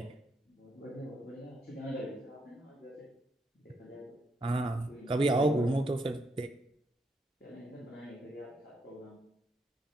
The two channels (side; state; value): both; normal; correlation 0.77